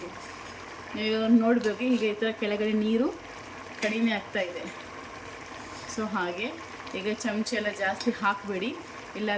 ನೀವು ನೋಡಬೇಕು, ಈಗ ಈ ಥರ ಕೆಳಗಡೆ ನೀರು ಕಡಿಮೆ ಆಗ್ತಾಯಿದೆ. ಸೊ ಹಾಗೆ ಈಗ ಚಮಚ ಎಲ್ಲ ಜಾಸ್ತಿ ಹಾಕಬೇಡಿ,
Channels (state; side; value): identical; both; correlation 1.00